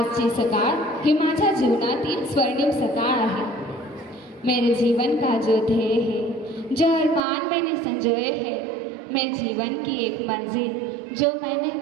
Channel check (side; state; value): left; drops out; at 7.2 s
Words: सकाळ ही माझ्या जीवनातील स्वर्णिम सकाळ आहे। मेरे जीवन का जो ध्येय है, जो अरमान मैंने संजोए हैं, मैं जीवन की एक मंजिल जो मैंने